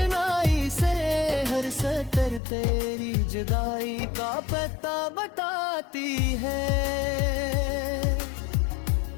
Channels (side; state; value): right; drops out; at 2.4 s